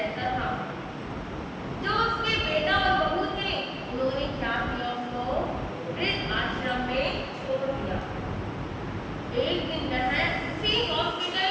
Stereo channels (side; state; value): both; identical; correlation 1.00